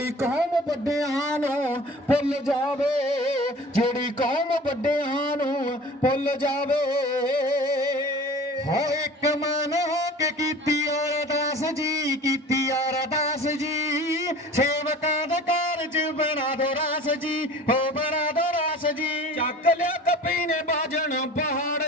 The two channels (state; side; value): normal; both; correlation 0.42